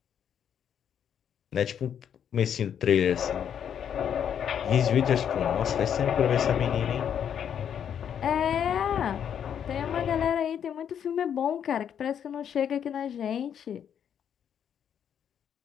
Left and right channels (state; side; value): quieter; right; 8.7 dB